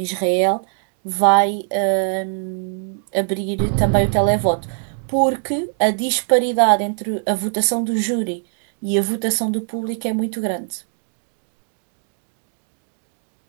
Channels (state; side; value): silent; left; 57 dB below the other